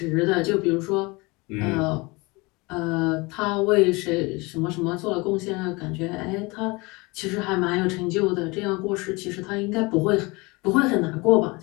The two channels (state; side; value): quieter; right; 25.3 dB